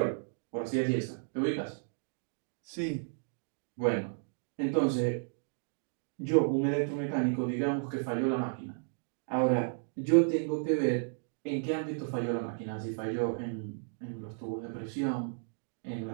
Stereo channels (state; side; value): silent; left; digital silence